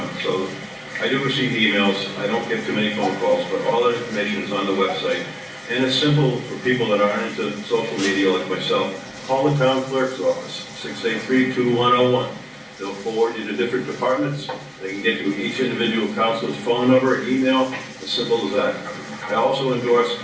So I do receive emails, I don't get too many phone calls, but all that information is on the website. And it's simple for people that aren't into social media like myself. Call the town clerk's office, 683-2101. They'll forward you to different departments. They can get you each individual council's phone number, email, as simple as that. I also endorse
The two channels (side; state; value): both; identical; correlation 1.00